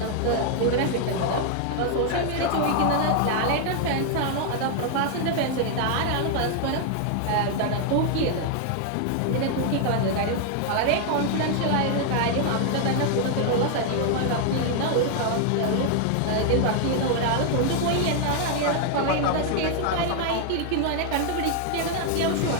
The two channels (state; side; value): different; both; correlation 0.00